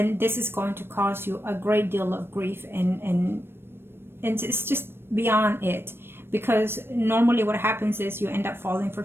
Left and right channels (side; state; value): left; late; 0.11 ms